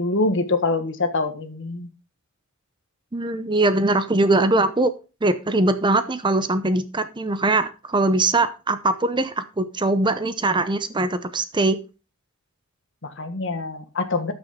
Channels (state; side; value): normal; both; correlation 0.29